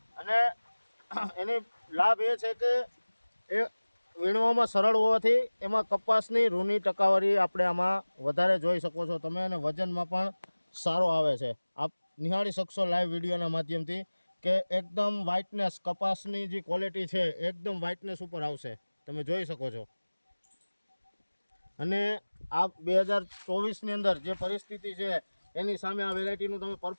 અને એની લાભ એ છે કે એ વીણવામાં સરળ હોવાથી એમાં કપાસની રૂની ટકાવારી આપણે આમાં વધારે જોઈ શકો છો તમે, અને વજનમાં પણ સારો આવે છે. આપ નિહાળી શકશો લાઈવ વિડીયોના માધ્યમથી કે એકદમ વ્હાઇટનેસ, કપાસની જે ક્વોલિટી છે એકદમ વ્હાઇટનેસ ઉપર આવશે, તમે જોઈ શકો છો. અને આ 2024ની અંદર જે પરિસ્થિતિ છે એની સામે આ વેરાયટીનું તમે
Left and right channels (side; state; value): both; inverted; correlation -1.00